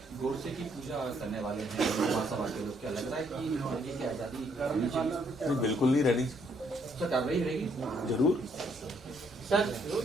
गोडसे की पूजा करने वाले हैं महासभा के लोग, क्या लग रहा है कि लड़की की आजादी रहनी चाहिए? बिल्कुल नहीं रहनी, सर कार्रवाई रहेगी जरूर। सर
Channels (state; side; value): normal; both; correlation 0.71